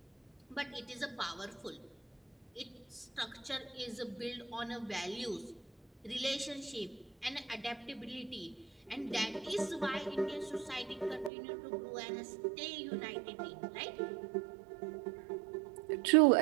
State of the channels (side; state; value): left; drops out; at 11.3 s